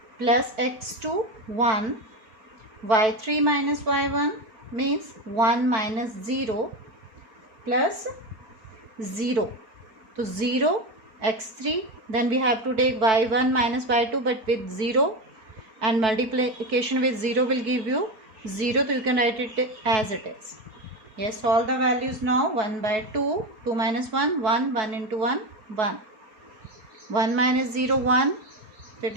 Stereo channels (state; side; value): late; left; 4.5 ms